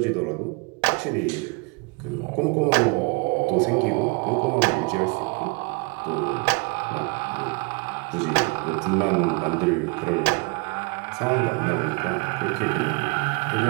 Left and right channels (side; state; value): left; quieter; 30.0 dB